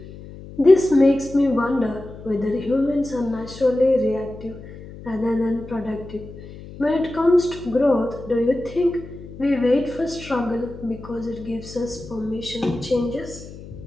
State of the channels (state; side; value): noise; left; hum, 15 dB below the sound